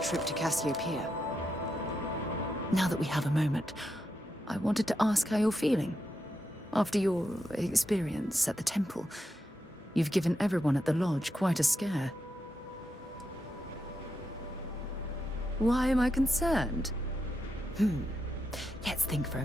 to Cassiopeia. Now that we have a moment, I wanted to ask how you're feeling. After your experience at the temple, you've given everyone at the lodge quite a scare. Why am I concerned? Let's think for a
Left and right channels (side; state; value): both; normal; correlation 0.85